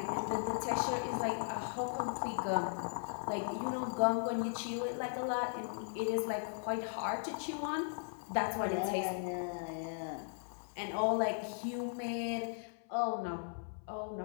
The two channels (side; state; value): right; silent; 53 dB below the other